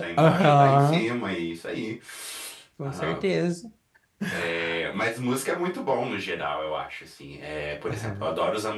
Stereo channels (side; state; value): both; identical; correlation 1.00